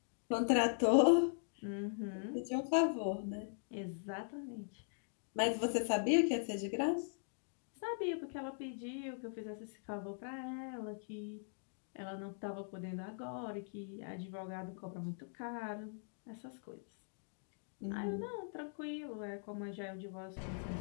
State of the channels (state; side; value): silent; right; digital silence